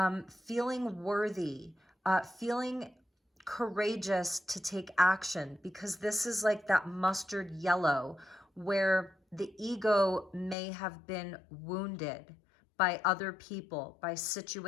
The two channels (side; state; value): right; drops out; at 10.6 s